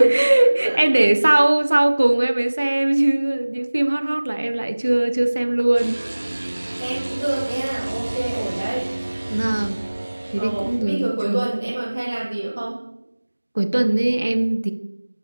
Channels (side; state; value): both; inverted; correlation -1.00